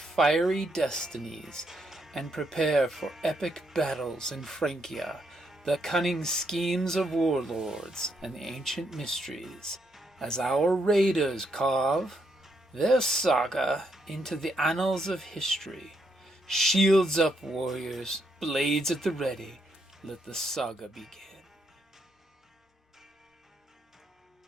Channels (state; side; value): normal; both; correlation 0.77